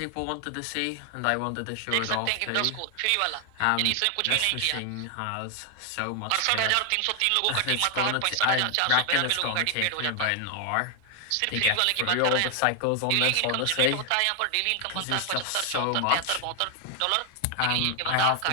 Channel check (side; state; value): both; different; correlation 0.00